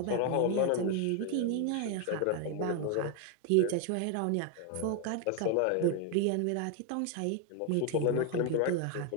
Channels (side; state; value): both; different; correlation 0.01